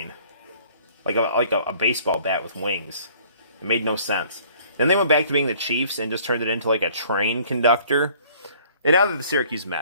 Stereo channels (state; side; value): inverted; both; correlation -0.55